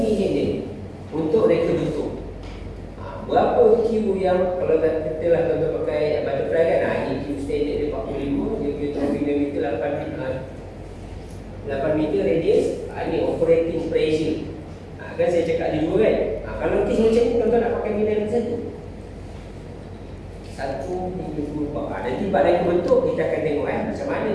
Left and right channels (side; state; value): both; identical; correlation 1.00